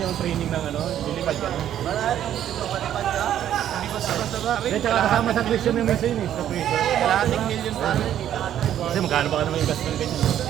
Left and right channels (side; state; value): left; quieter; 10.9 dB